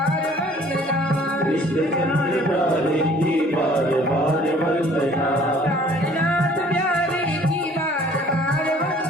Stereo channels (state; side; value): normal; both; correlation 0.54